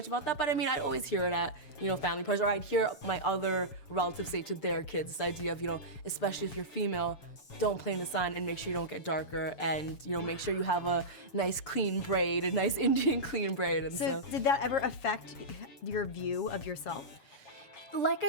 about that. But I mean, I'd always hear it at, you know, family parties, or I'd hear my other relatives say to their kids this idea of, you know, especially if you're female, don't play in the sun and make sure you don't get darker and, you know, make sure you have a nice clean braid, a nice Indian clean braid. And So did that ever affect your view of yourself? like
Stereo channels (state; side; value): late; right; 6.8 ms